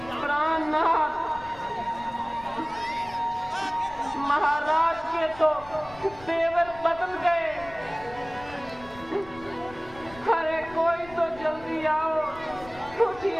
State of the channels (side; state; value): left; noise; rumble, 19 dB below the sound